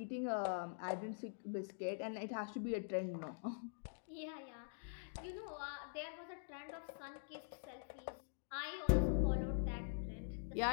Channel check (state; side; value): silent; right; digital silence